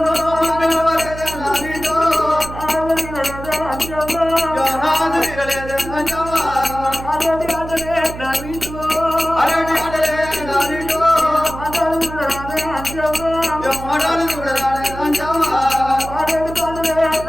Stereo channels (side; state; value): right; noise; hum, 11 dB below the sound